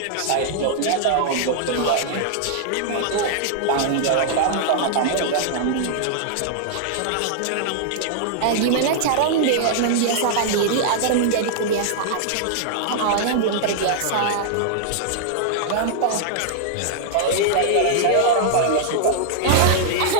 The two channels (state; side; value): different; both; correlation -0.01